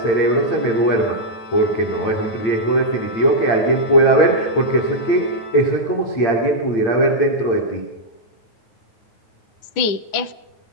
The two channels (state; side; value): late; right; 9.9 ms